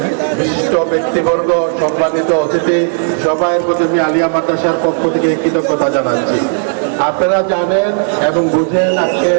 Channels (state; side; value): silent; left; 71 dB below the other